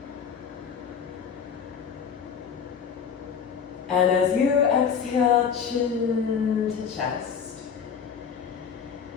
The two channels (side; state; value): right; quieter; 7.0 dB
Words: And as you exhale, chin to chest.